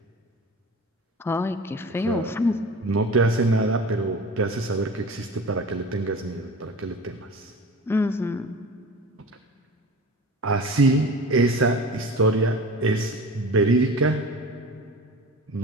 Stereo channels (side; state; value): both; normal; correlation 0.37